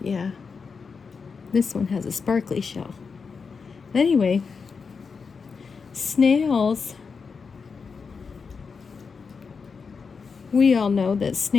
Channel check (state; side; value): quieter; right; 5.3 dB